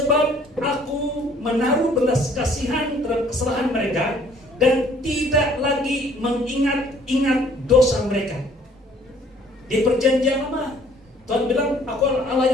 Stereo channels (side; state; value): both; normal; correlation 0.58